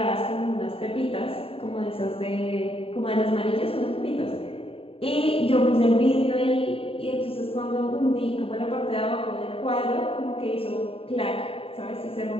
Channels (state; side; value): late; right; 0.27 ms